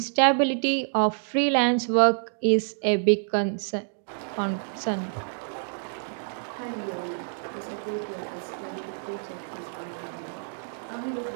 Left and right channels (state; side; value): silent; left; digital silence